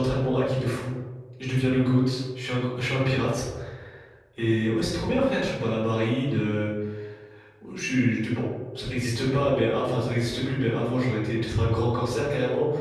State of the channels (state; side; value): identical; both; correlation 1.00